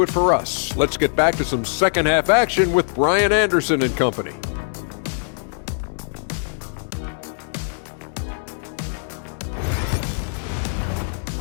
it for us. Let's get back to some second half action with Brian Anderson and company.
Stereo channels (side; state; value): right; silent; 64 dB below the other